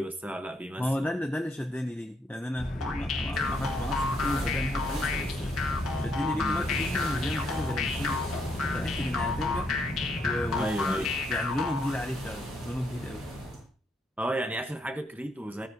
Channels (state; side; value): normal; both; correlation 0.74